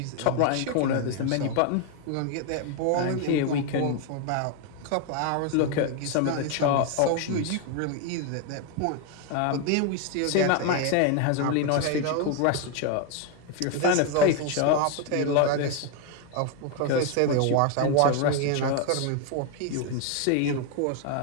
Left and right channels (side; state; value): both; different; correlation 0.01